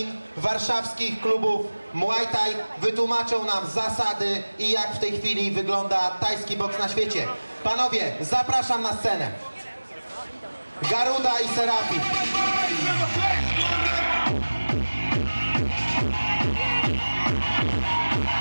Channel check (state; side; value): inverted; both; correlation -1.00